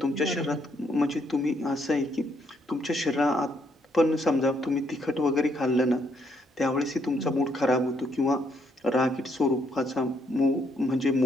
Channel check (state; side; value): normal; both; correlation 0.72